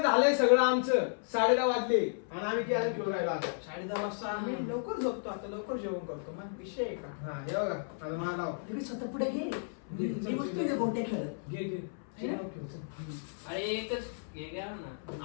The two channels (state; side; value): silent; right; 56 dB below the other